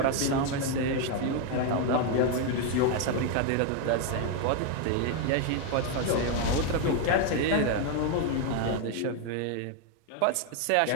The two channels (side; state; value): both; different; correlation 0.01